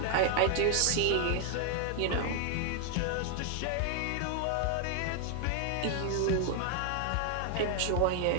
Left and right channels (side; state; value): both; different; correlation 0.00